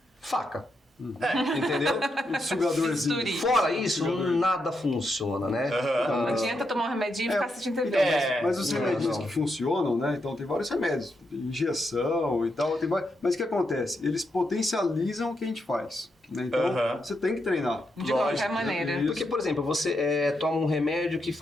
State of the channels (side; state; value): both; normal; correlation 0.82